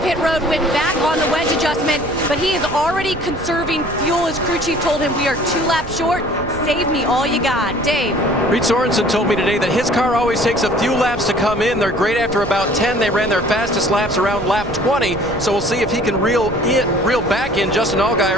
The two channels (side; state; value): right; noise; rumble, 12 dB below the sound